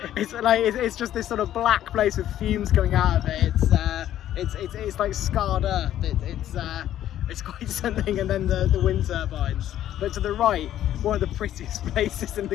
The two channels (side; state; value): right; quieter; 12.0 dB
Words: It's just this sort of black place with fumes coming out of it. It's like scarred earth. It's quite something. And then the wind turbines. But to the right, one of the prettiest places in